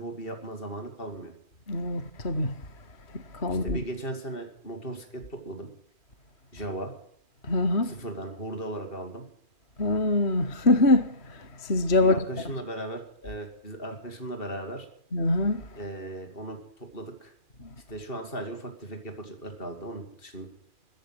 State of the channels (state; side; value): late; right; 2.4 ms